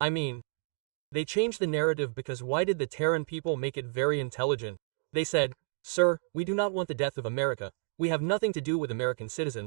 mean, they changed the narrative, because why did the Tehran people make it very intelligent? They said, "Sir, we do not want the death of America. We have nothing to do with American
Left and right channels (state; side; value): silent; left; 57 dB below the other